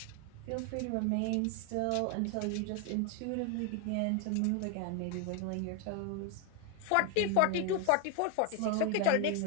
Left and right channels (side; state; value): both; different; correlation 0.01